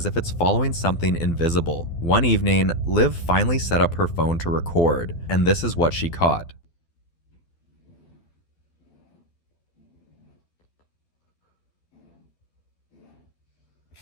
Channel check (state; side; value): late; right; 12 ms